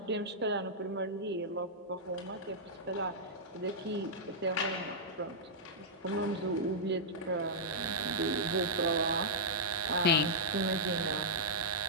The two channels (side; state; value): both; normal; correlation -0.11